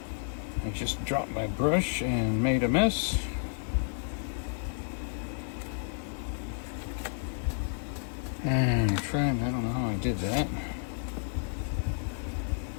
I just dropped my brush and made a mess. And I don't know how I did that.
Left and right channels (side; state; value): right; silent; 57 dB below the other